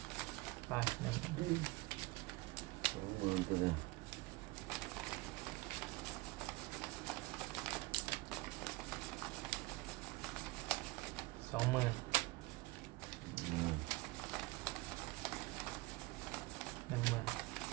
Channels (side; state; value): left; quieter; 22.5 dB